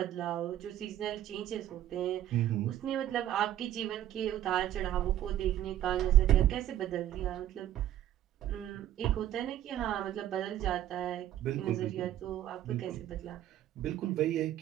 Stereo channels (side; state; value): left; quieter; 12.3 dB